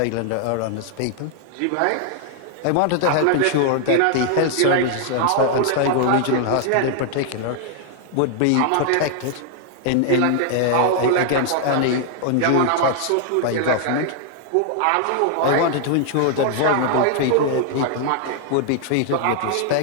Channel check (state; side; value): different; both; correlation 0.00